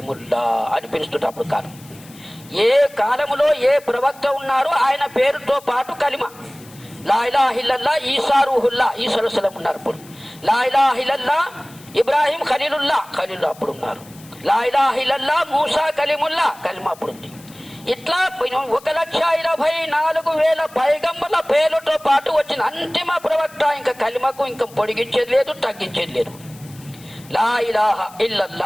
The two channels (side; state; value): left; noise; hiss, 23 dB below the sound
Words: అని పిలుస్తుంటే అప్పుడు కాలం. ఏ కాలములో ఏ ప్రవక్త ఉన్నారో ఆయన పేరుతో పాటు కలిమా. లా ఇలాహా ఇల్లల్లా ఈసా రూహుల్లా, ఈసా అలైహిస్సలాం ఉన్నారు అప్పుడు. లా ఇలాహా ఇల్లల్లా ఇబ్రాహీం ఖలీలుల్లా, ఖలీలుల్లా అప్పుడు ఉన్నారు. లా ఇలాహా ఇల్లల్లా మూసా కలీముల్లా, కలిమా అప్పుడు ఉంది. ఇట్లా 1,24,000 పైగంబర్ల పేర్లతో పాటు వచ్చిన అంతిమ ప్రవక్త. ఇంకా కలిమకు ఇంకా పొడిగించేది లేదు, తగ్గించేది లేదు. లా ఇలాహా